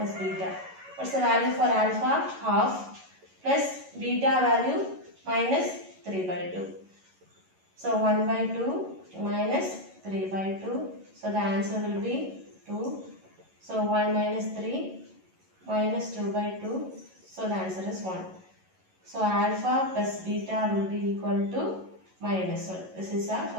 beta. What's the value for alpha? Half plus beta value minus 3 by 2. So 1 by 2 minus 3 by 2. So the answer will be 2. So 1 minus 3 minus 2 by 2. So the answer is 1. So alpha plus beta will be equal to minus 1. This is our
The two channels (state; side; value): late; left; 11 ms